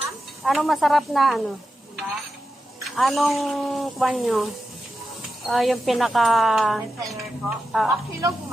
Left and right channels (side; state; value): both; normal; correlation 0.90